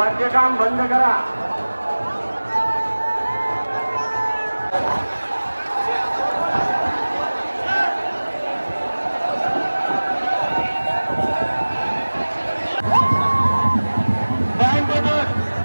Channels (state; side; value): inverted; both; correlation -1.00